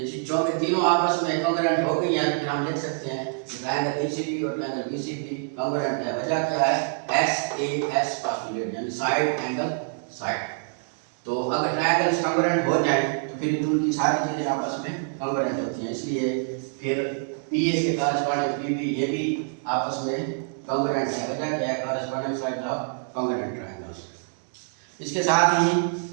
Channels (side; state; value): left; silent; digital silence